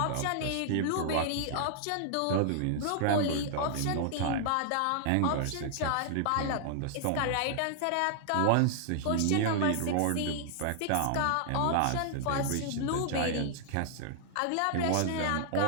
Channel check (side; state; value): both; different; correlation -0.01